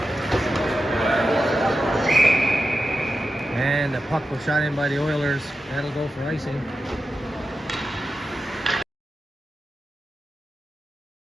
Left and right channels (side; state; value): both; normal; correlation 0.91